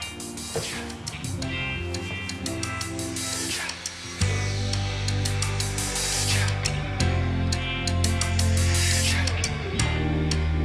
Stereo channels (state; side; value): identical; both; correlation 1.00